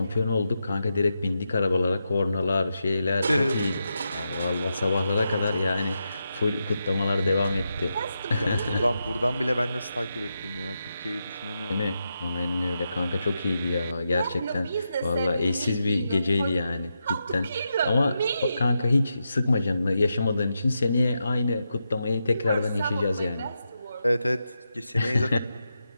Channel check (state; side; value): inverted; both; correlation -0.86